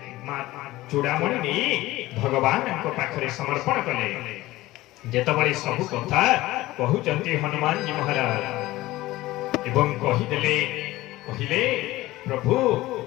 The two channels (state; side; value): quieter; right; 17.7 dB